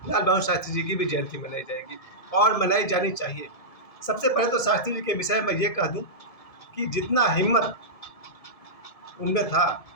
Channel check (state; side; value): late; right; 1.7 ms